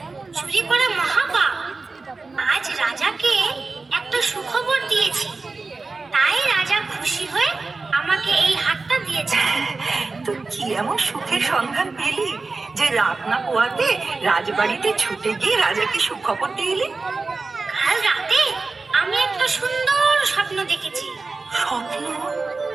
চুরি করা মহাপাপ। আজ রাজাকে একটা সুখবর দিয়েছি, তাই রাজা খুশি হয়ে আমাকে এই হারটা দিয়েছে। তুই কি এমন সুখের সন্ধান পেলি যে রাত না পোয়াতে রাজবাড়িতে ছুটে গিয়ে রাজাকে সুখবর দিয়ে এলি? কাল রাতে আমি একটা সুন্দর স্বপ্ন দেখেছি। স্বপ্ন?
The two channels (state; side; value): quieter; left; 3.9 dB